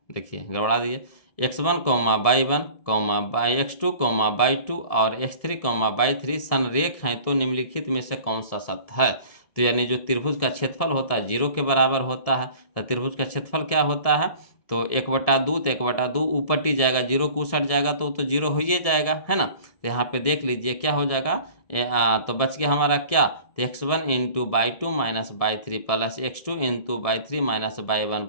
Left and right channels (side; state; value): right; late; 1.7 ms